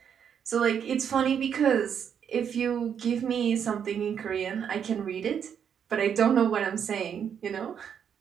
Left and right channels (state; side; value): quieter; left; 8.0 dB